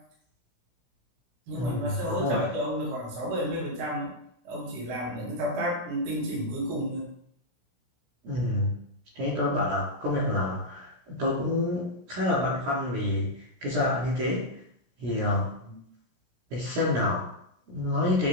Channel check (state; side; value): late; left; 17 ms